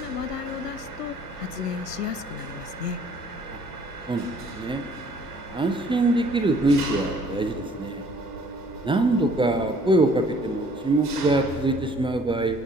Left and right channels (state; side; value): normal; both; correlation 0.57